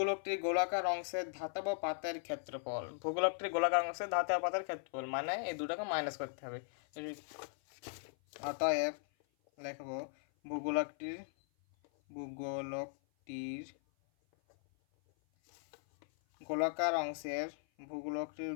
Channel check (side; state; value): right; silent; 52 dB below the other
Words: গোলাকার অংশের ধাতব পাতের ক্ষেত্রফল। ভূগোলকটির গোলাকার অংশের ধাতব পাতের ক্ষেত্রফল মানে এই দুটাকে মাইনাস করতে হবে। অতএব লিখব ভূগোলকটির গোলাকার অংশের